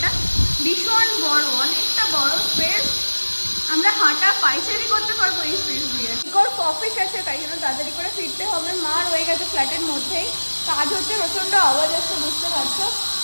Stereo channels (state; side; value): inverted; both; correlation -1.00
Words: ভীষণ বড়, অনেকটা বড় স্পেস, আমরা হাঁটা পাইচারি করতে পারবো এই স্পেস দিয়ে। ইকোর অফিস আছে, তাই জন্য তাড়াতাড়ি করে ফিরতে হবে। মা রয়ে গেছে ফ্ল্যাটের মধ্যেই, কাজ হচ্ছে, প্রচন্ড আওয়াজ আসছে, বুঝতে পারছো।